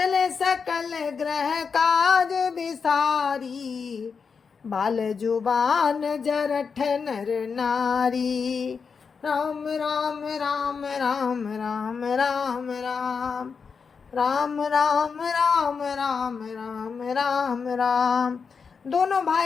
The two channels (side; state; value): right; quieter; 5.7 dB